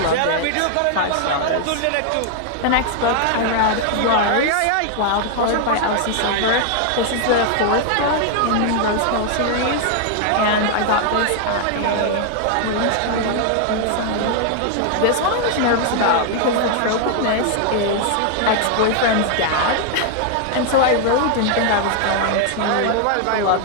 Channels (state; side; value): different; both; correlation 0.00